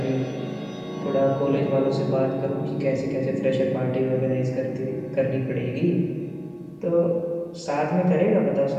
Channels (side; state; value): both; identical; correlation 1.00